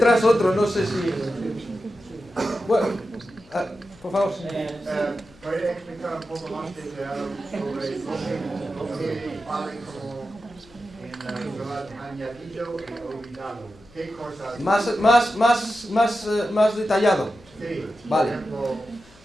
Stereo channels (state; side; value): noise; left; hum, 27 dB below the sound